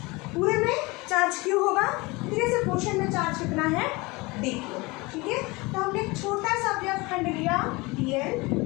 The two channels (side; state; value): right; quieter; 24.3 dB